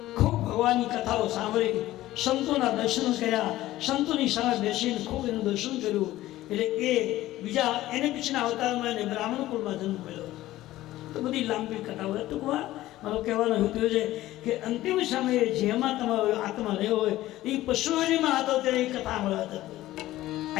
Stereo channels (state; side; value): quieter; right; 15.7 dB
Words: ખૂબ ભગવાનની કથાઓ સાંભળી, સંતોના દર્શન કર્યા, સંતોની સામે બેસીને ખૂબ એનું દર્શન કર્યું. એટલે એને પછીના અવતારમાં એને બ્રાહ્મણ કુળમાં જન્મ મળ્યો. તો બધી લાંબી કથાઓ. ટૂંકમાં મારો કહેવાનો હેતુ છે કે અંતિમ સમયે જેમાં તમારો આત્મા રહ્યો હોય એ પશુ યોનિમાં હતો ત્યારે એ કથા મળવા હતી.